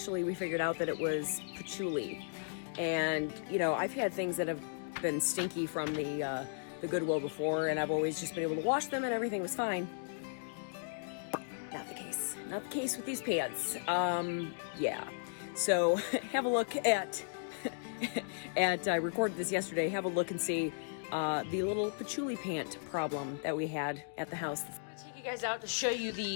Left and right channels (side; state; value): right; silent; digital silence